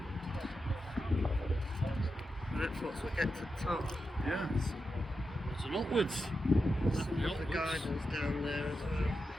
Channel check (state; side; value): normal; both; correlation 0.88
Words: Right, folks, we get to the top. Yeah. It's an upwards. Some of the gardens down there as well.